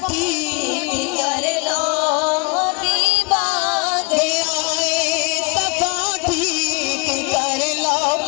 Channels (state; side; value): quieter; right; 30.8 dB